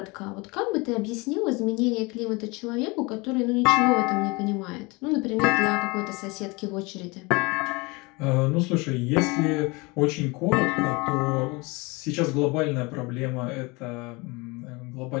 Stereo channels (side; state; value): right; quieter; 26.1 dB